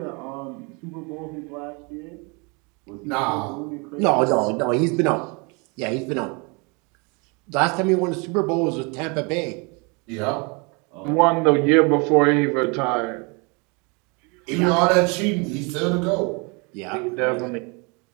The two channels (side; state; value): left; quieter; 31.0 dB